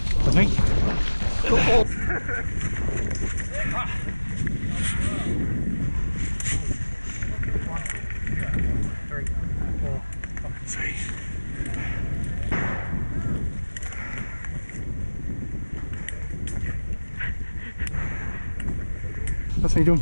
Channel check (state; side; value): inverted; both; correlation -1.00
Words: think. That's me done